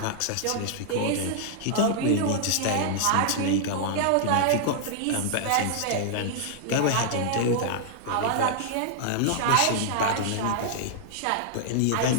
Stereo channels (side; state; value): both; different; correlation -0.01